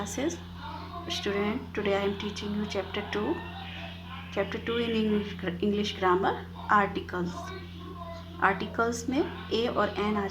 Student, today I am teaching you chapter 2. Chapter 2 in English grammar, articles. Articles में ए और N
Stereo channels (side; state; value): both; identical; correlation 1.00